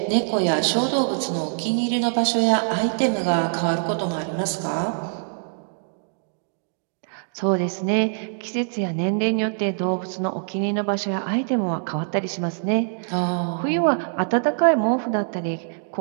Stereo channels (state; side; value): silent; left; digital silence